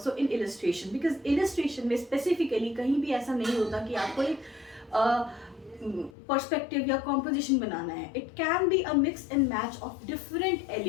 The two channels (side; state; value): right; drops out; at 6.1 s